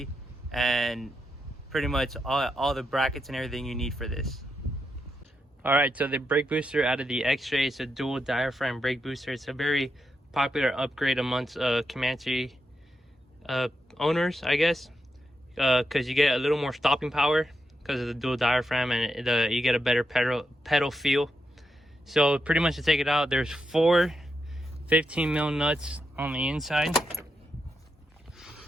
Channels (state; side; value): normal; both; correlation 0.85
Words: and pretty much all the brackets and everything you need for this. Alright, so the brake booster out of the XJ is a dual diaphragm brake booster. It's a very popular upgrade amongst Comanche owners, I guess, because you get a little more stopping power because of the dual diaphragm, and you get a better pedal feel. So pretty much to take it out, there's 4 15mm nuts on the inside.